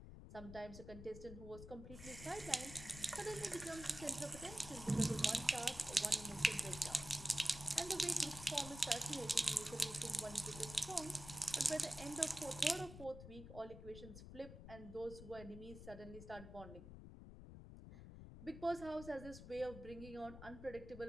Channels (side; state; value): left; noise; rumble, 12 dB below the sound